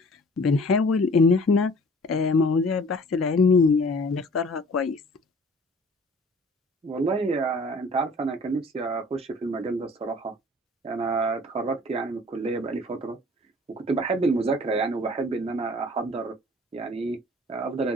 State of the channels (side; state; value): both; normal; correlation 0.50